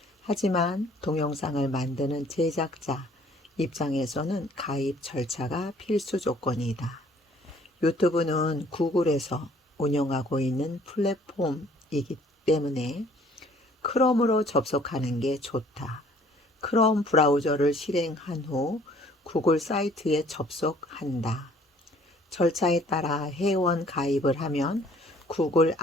하지만 동영상을 만드는 제작자 입장에서는 가입 절차가 필수 조건이다. 유튜브는 구글에서 운영하고 있는 플랫폼이기 때문에 크롬으로 접속하는 게 좋다. 크롬 브라우저를 실행한 후 구글 사이트에 접속한다. 절차에 따라 회원 가입을 하면 구글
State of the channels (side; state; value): both; normal; correlation 0.58